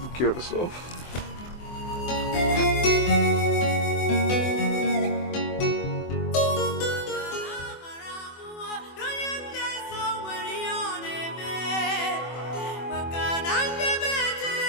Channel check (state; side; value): late; right; 24 ms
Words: care of yourself.